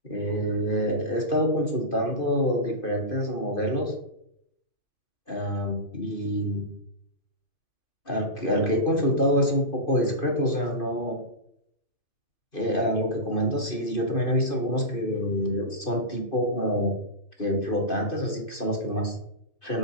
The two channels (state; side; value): late; right; 2.5 ms